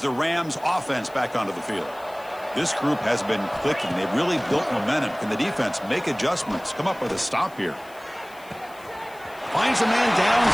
Rams offense back onto the field. This group has been clicking. They've really built momentum. Can the defense make adjustments? Come up with a stop here. Finds a man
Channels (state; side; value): noise; left; hiss, 24 dB below the sound